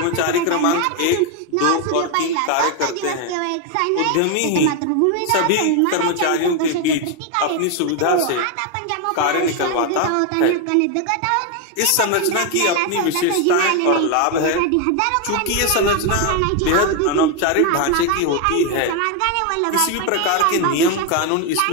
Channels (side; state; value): both; different; correlation 0.01